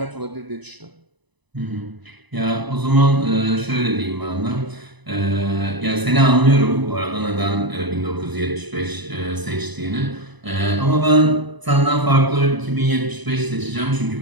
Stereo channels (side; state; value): left; late; 1.0 ms